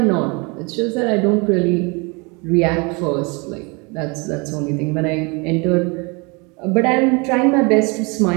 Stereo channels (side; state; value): left; quieter; 29.6 dB